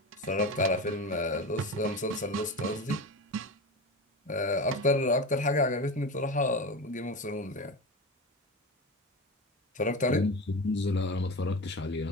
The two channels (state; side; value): normal; both; correlation 0.25